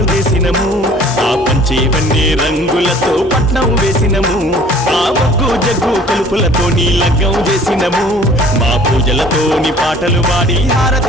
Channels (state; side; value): normal; both; correlation 0.51